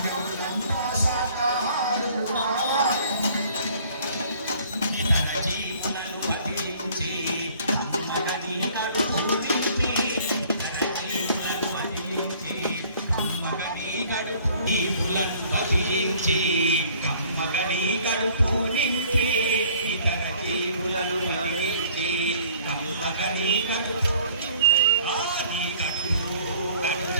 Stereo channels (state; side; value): inverted; both; correlation -0.55